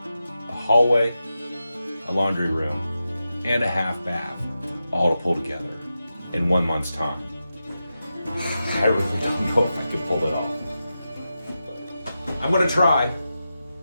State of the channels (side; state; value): both; inverted; correlation -0.90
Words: hallway, a laundry room, and a half bath, all to pull together in 1 month's time. I really don't know if I can pull it off. But I'm going to try.